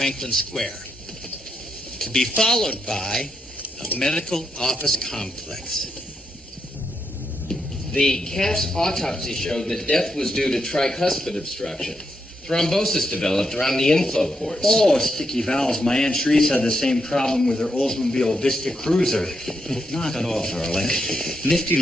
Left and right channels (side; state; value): both; normal; correlation 0.82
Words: Square, to be followed by a medical office complex. The calf's autopsy showed that death was due to tricuspid obstruction. Thrombosis developed around the inflow ports. Oh, sticky valves. My Aunt Shreves had the same problem with her Oldsmobile Vista Cruiser. Knock it off, darling. Nifty